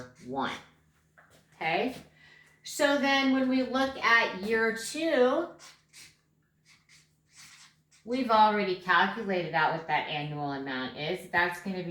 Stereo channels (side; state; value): both; identical; correlation 1.00